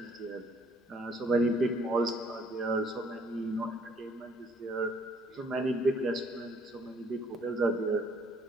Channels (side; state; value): both; normal; correlation 0.63